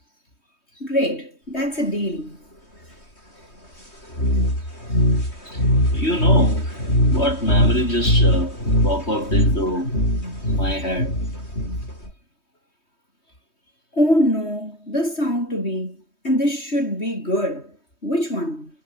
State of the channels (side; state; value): right; late; 3.2 ms